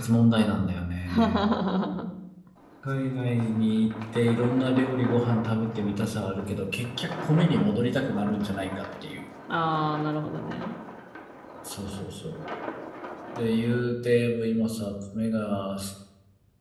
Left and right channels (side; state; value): both; identical; correlation 1.00